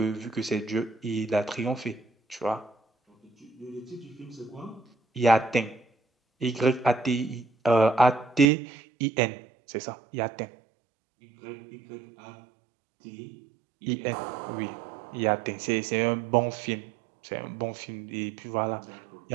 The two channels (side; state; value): left; drops out; at 8.5 s